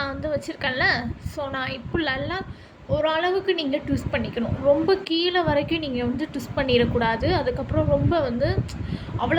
வந்து வச்சுருக்கேன்ல. ஸோ நான் இப்போ நல்லா ஓரளவுக்கு நீங்கள் ட்விஸ்ட் பண்ணிக்கணும். ரொம்ப கீழே வரைக்கும் நீங்கள் வந்து ட்விஸ்ட் பண்ணிடக்கூடாது. அதுக்கப்புறம் ரொம்ப வந்து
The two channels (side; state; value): both; identical; correlation 1.00